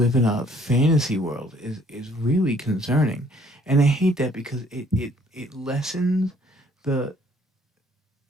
in a fantasy world is really concerning. And I hate that because it lessens the...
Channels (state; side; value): normal; both; correlation 0.61